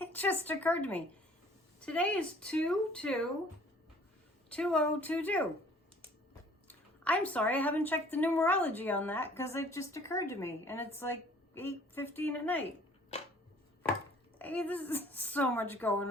just occurred to me. Today is 2/2/2022. I'm sorry, I haven't checked the numerology on that because it just occurred to me and it's like 8:15 at night. Hey, this is so much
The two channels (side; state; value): both; normal; correlation 0.54